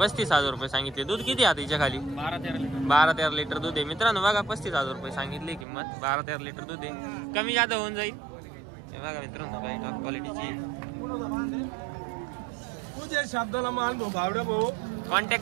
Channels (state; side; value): drops out; left; at 5.7 s